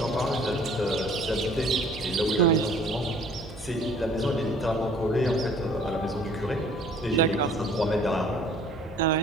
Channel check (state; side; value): normal; both; correlation 0.54